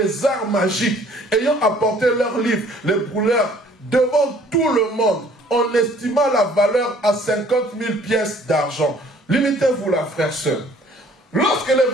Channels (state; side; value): normal; both; correlation 0.56